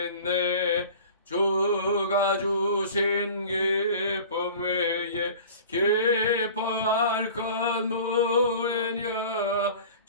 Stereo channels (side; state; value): both; inverted; correlation -0.42